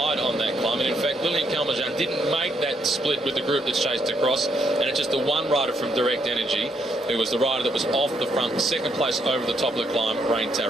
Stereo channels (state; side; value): normal; both; correlation 0.74